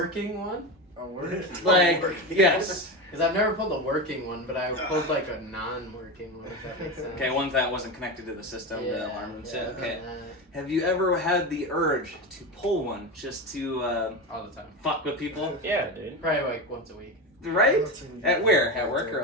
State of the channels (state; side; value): normal; both; correlation 0.20